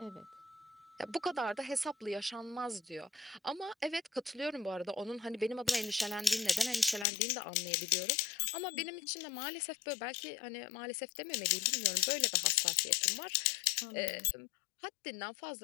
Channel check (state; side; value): drops out; right; at 7.1 s